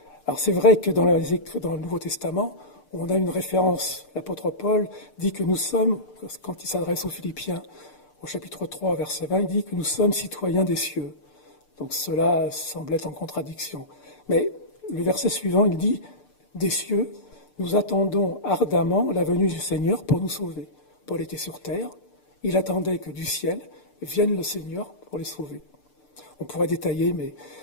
Alors c'est vrai que dans le Nouveau Testament, on a une référence. L'apôtre Paul dit que nous sommes, quand il s'adresse aux Philippiens, au chapitre 3, verset 20, il dit que nous sommes citoyens des cieux. Donc cela semble être en contradiction. Mais le verset suivant, il dit « Des cieux, nous attendons ardemment la venue du Seigneur pour nous sauver. » Paul était sur terre, il attendait que du ciel vienne le Seigneur pour les sauver. On pourrait détailler, mais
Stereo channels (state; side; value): late; right; 6.7 ms